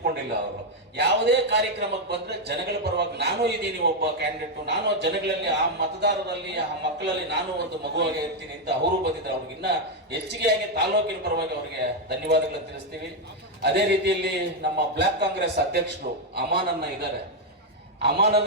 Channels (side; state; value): both; normal; correlation 0.02